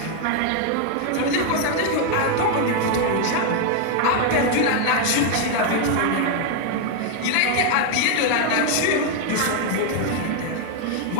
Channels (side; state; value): both; different; correlation 0.00